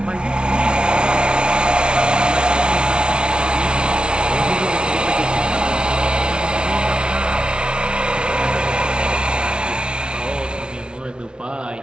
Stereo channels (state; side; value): late; left; 0.056 ms